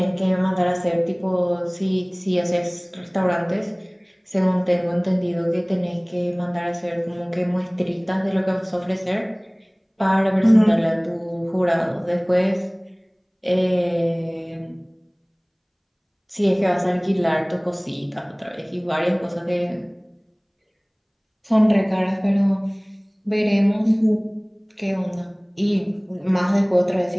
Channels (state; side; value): identical; both; correlation 1.00